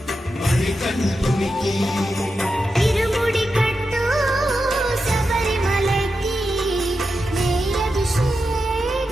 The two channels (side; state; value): both; normal; correlation 0.89